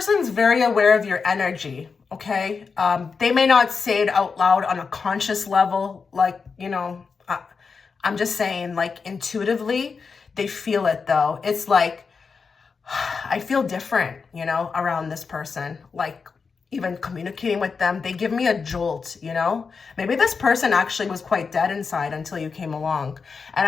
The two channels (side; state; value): right; quieter; 5.2 dB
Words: very aware of your energy, okay? They may not say it out loud on a conscious level, I'm just saying, intuitively, they feel it though. It's like, I feel different, around this person. Like, even communicating with them, they give me a jolt, Maybe this person actually was quite dead inside until you came along. And